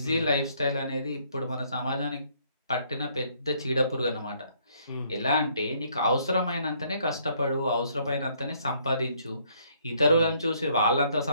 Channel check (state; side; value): inverted; both; correlation -0.66